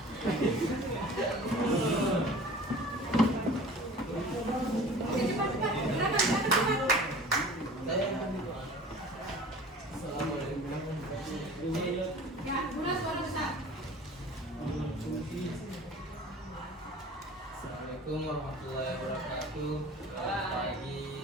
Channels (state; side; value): normal; both; correlation 0.43